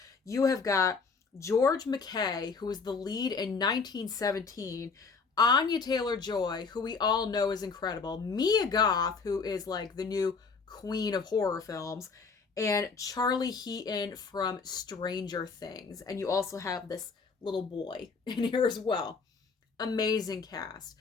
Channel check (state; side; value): quieter; right; 4.9 dB